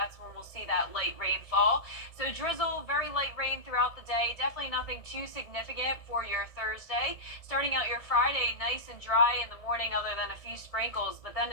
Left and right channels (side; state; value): right; late; 1.7 ms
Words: when we'll see that light rainfall. So drizzle, very light rain throughout the day. Definitely nothing too significant for your Thursday. Starting out your Friday, nice and dry in the morning other than a few sprinkles. But then